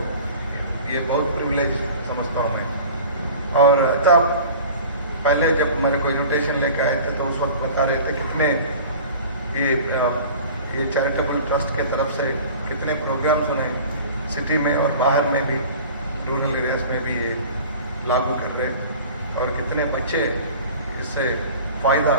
ये बहुत प्रिविलेज समझता हूँ मैं। और तब पहले जब मेरे को इन्विटेशन लेकर आए थे तो उस वक्त बता रहे थे कितने ये चैरिटेबल ट्रस्ट के तरफ से कितने प्रोग्राम्स उन्हें सिटी में और बाहर में भी, रूरल एरियाज में भी ये लागू कर रहे हैं और कितने बच्चे इससे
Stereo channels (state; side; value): inverted; both; correlation -0.42